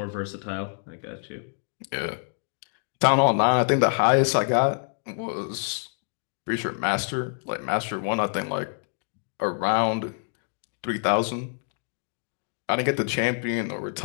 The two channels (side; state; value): right; silent; 60 dB below the other